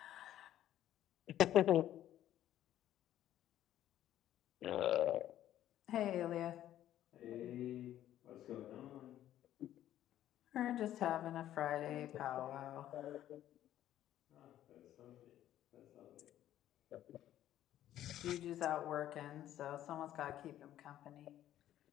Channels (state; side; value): quieter; right; 12.3 dB